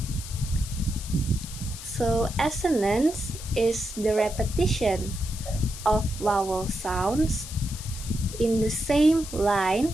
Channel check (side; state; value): left; noise; hiss, 12 dB below the sound